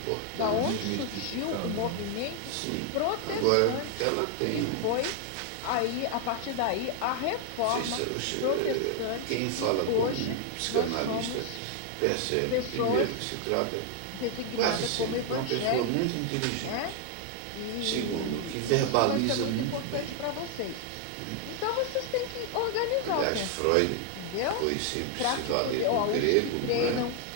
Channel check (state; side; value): different; both; correlation 0.00